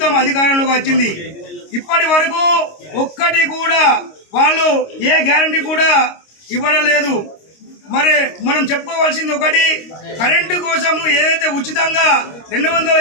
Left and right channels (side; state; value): right; late; 26 ms